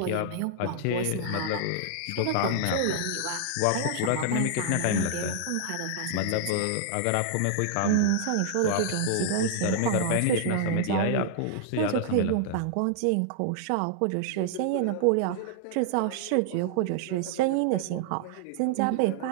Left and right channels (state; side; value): different; both; correlation -0.01